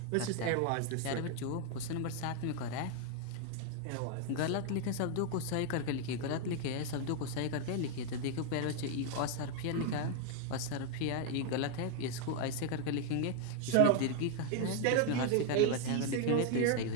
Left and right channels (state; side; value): different; both; correlation 0.00